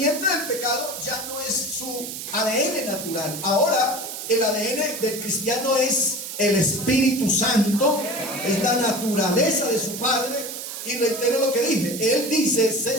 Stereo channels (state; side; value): noise; right; hiss, 8 dB below the sound